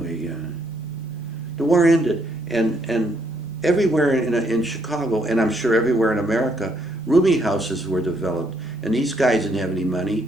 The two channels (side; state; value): both; normal; correlation 0.72